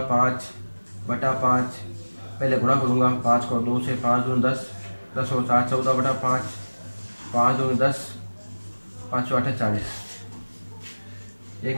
5 बटा 5। पहले गुणा करूँगा, 5 को 2 से, 5 दूनी 10, 10 और 4 14 बटा 5, 5 दूनी 10, 5 8 40। एक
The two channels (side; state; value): both; inverted; correlation -1.00